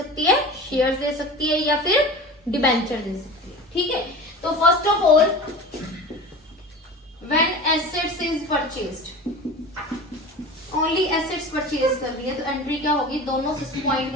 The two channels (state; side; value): normal; both; correlation 0.35